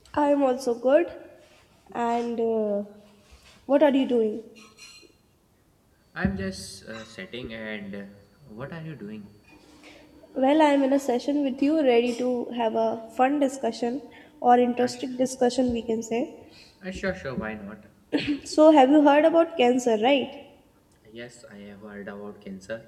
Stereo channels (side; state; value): both; identical; correlation 1.00